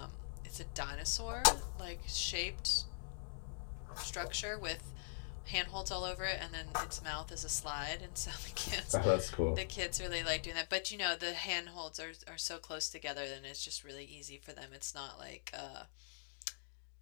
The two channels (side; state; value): right; silent; digital silence